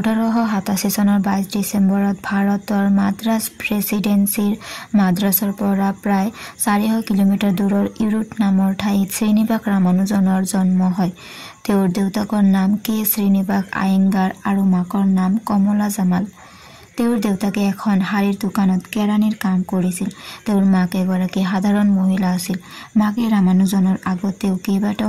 চনৰ 22 ডিচেম্বৰত ভাৰতৰ মাদ্ৰাজ প্ৰেছিডেন্সিৰ মাদ্ৰাজৰ পৰা প্ৰায় 400 কিলোমিটাৰ দূৰৰ ইৰোড নামৰ ঠাইত শ্ৰীনিবাস ৰামানুজনৰ জন্ম হয়। তেওঁৰ দেউতাকৰ নাম কে শ্ৰীনিবাস আয়েংগাৰ আৰু মাকৰ নাম কমলা জামাল। তেওঁৰ দেউতাকে এখন শাড়ীৰ দোকানত কেৰাণীৰ কাম কৰিছিল। তেওঁৰ মাক এগৰাকী সাধাৰণ মহিলা আছিল। মাকে ৰামানুজনৰ আগতেও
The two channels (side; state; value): both; identical; correlation 1.00